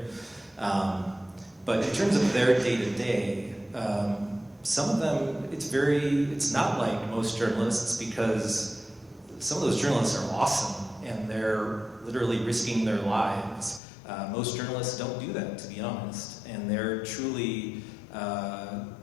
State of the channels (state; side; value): drops out; right; at 13.8 s